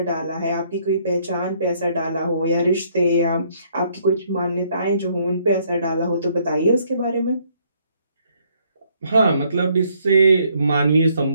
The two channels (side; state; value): both; inverted; correlation -0.68